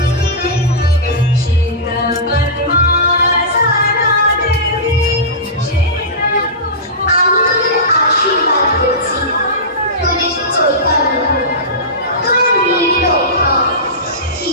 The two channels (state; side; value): normal; both; correlation -0.18